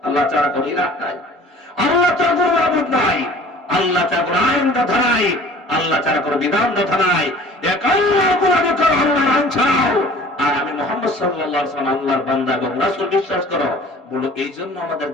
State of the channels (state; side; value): normal; both; correlation 0.47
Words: আল্লাহ ছাড়া কোনো ইলাহ নাই, আল্লাহ ছাড়া কোনো মাবুদ নাই, আল্লাহ ছাড়া কোনো আইন কথা নাই, আল্লাহ ছাড়া কোনো বিধান কথা নাই। এক আল্লাহ কোরআনে করো, আল্লাহর আইন ছাড়াও, আর আমি মুহাম্মদ সাল্লাল্লাহু আলাইহি ওয়াসাল্লাম আল্লাহর বান্দা এবং রাসূল বিশ্বাস করো। বলো এই জন্য